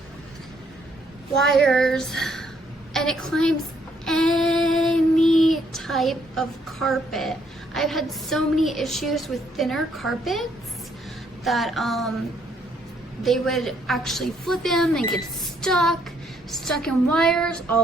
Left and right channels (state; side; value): normal; both; correlation 0.69